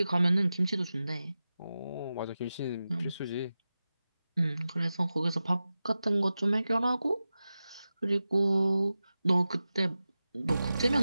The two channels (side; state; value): both; inverted; correlation -0.94